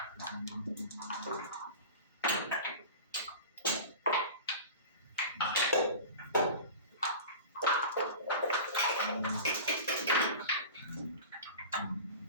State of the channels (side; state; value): both; inverted; correlation -0.34